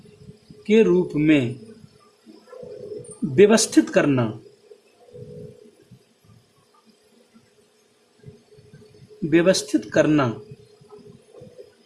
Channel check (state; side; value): identical; both; correlation 1.00